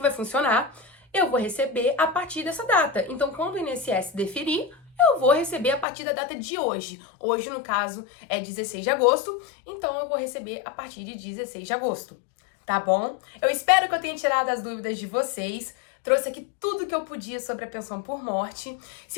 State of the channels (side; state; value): right; drops out; at 5.9 s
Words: vai funcionar? Eu vou receber a partir dessa data. Então, quando o INSS deferir, eu vou receber a partir da data de hoje. Hoje, no caso, é 16 de agosto, então eu vou receber a partir de 16 de agosto. Tá bom? Eu espero que eu tenha tirado as dúvidas de vocês. Trouxe aqui tudo que eu podia sobre a pensão por morte.